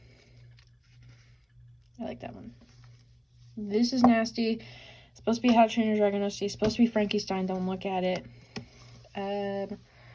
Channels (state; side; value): identical; both; correlation 1.00